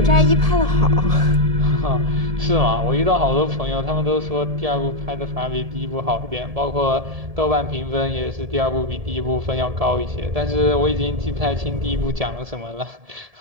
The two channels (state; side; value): late; left; 1.7 ms